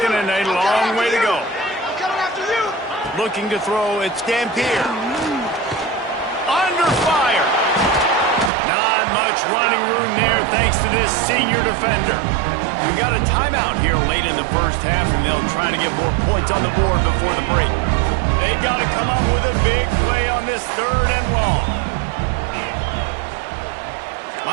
and a long way to go. Looking to throw, it's Dampier. Under fire. Not much running room there thanks to this senior defender. We've got a timeout here late in the 1st half, and they'll try to get more points on the board before the break. They've got to come up with a big play on this 3rd and long.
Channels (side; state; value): left; drops out; at 8.5 s